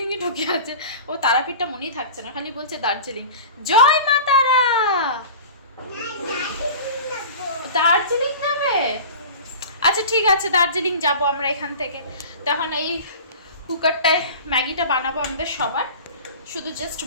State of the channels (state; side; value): inverted; both; correlation -0.37